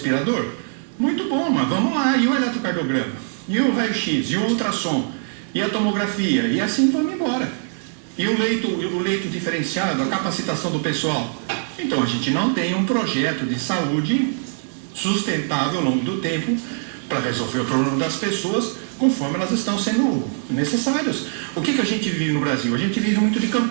Muito bom, mas vamos lá. E o eletrocardiograma? E o raio-x? E o ultrassom? E a tomografia? E assim vamos embora. E o leito diferenciado, a capacitação do pessoal? Então, a gente não tem um projeto de saúde sustentável ao longo do tempo para resolver o problema das pessoas conforme elas estão sendo necessárias. O que a gente vive no Brasil? A gente vive muito de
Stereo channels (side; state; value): left; silent; digital silence